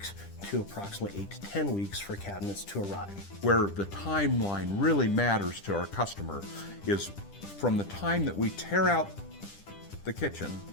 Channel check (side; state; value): right; late; 10 ms